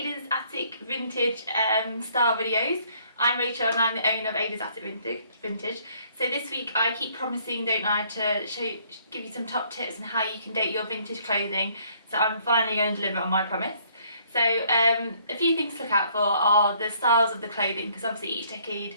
Attic Vintage style videos. I'm Rachel and I'm the owner of Ada's Attic Vintage. So this week I keep promising, don't I, to give you some top tips on how you can date your vintage clothing. So I'm finally going to deliver on my promise. So a few things to look out for are the styles of the clothing, because obviously each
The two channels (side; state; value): both; inverted; correlation -0.64